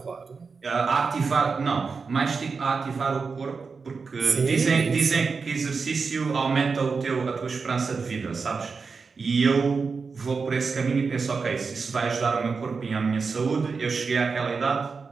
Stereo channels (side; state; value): left; quieter; 4.9 dB